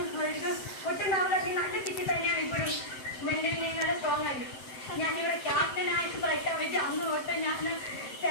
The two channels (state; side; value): late; right; 7.8 ms